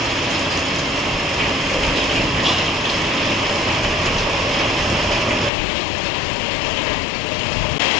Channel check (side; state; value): right; drops out; at 5.5 s